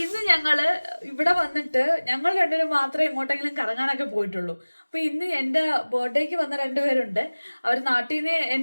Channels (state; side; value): inverted; both; correlation -1.00